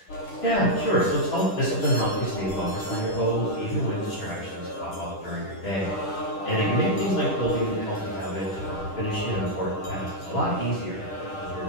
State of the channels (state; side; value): late; right; 10 ms